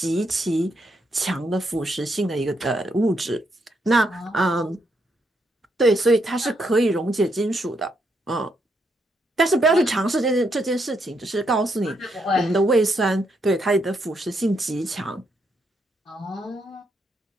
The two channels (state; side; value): normal; both; correlation 0.77